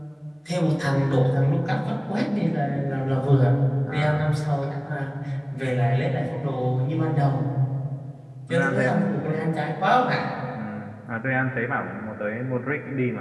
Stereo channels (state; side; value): identical; both; correlation 1.00